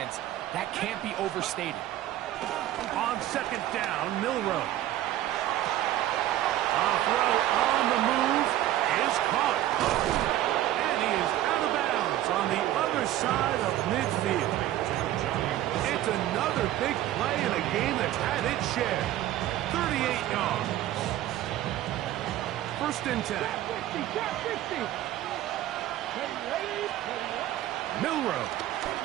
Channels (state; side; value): quieter; left; 13.7 dB